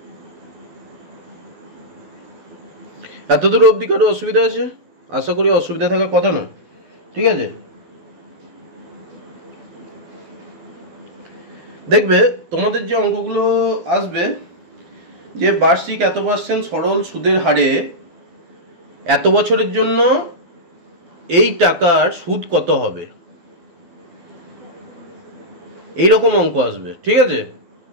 এতদূর অবধি কারো অসুবিধা আছে? আশা করি অসুবিধা থাকার কথা না। ঠিক আছে, দেখবে তোমাদের যে অঙ্কগুলো আসবে যে বার্ষিক এত পার্সেন্ট সরল সুদের হারে এত বছরের জন্য এই টাকার সুদ কত হবে, এইরকম অঙ্ক আসবে। ঠিক আছে,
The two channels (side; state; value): left; late; 12 ms